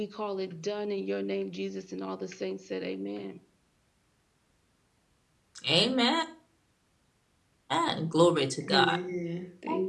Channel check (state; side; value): identical; both; correlation 1.00